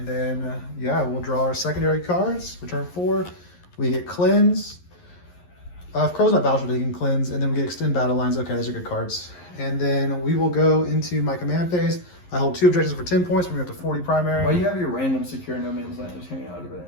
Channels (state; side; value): late; right; 11 ms